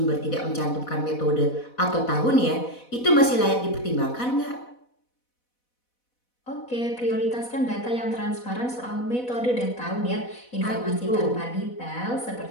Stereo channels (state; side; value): late; right; 4.1 ms